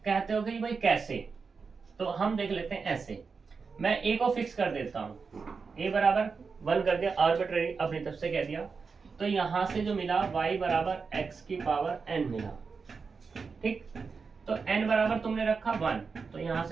कहते हो कि भाई कैसे, तो हम देख लेते हैं ऐसे। मैं a को फिक्स कर देता हूँ, a बराबर 1 कर दिया, आर्बिट्रेरी अपनी तरफ से कह दिया। तो यहां से जो मिला y बराबर x की पावर n मिला, ठीक। तो n बराबर तुमने रखा 1, तो यहां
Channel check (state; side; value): quieter; left; 5.1 dB